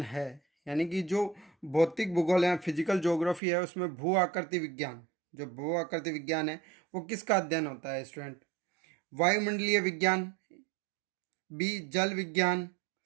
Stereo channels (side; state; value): left; drops out; at 3.4 s